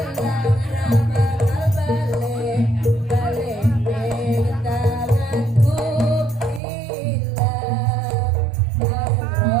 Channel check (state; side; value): drops out; left; at 6.6 s